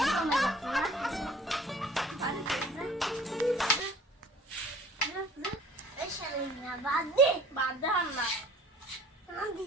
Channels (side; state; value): both; normal; correlation 0.50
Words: বাদ দে বাদ দে হাম না